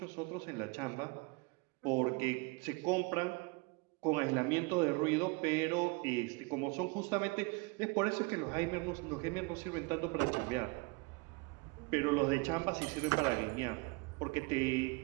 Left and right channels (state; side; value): quieter; left; 28.0 dB